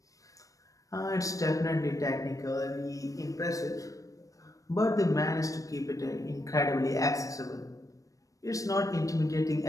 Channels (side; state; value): right; late; 0.16 ms